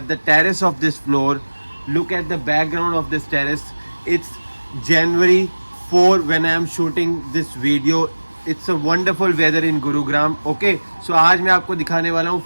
the terrace of this floor. Look at the background of this terrace. It's January 4 when I am shooting this video. It's a wonderful weather in Gurugram. Okay, so आज मैं आपको दिखाने वाला हूँ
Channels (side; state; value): both; inverted; correlation -1.00